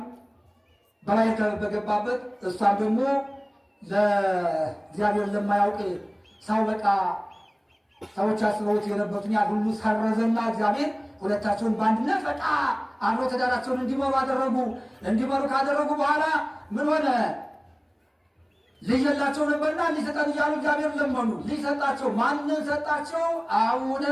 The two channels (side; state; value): both; identical; correlation 1.00